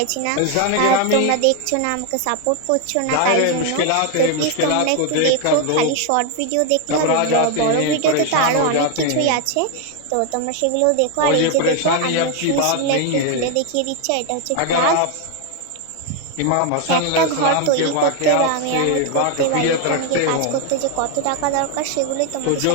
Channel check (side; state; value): both; different; correlation 0.01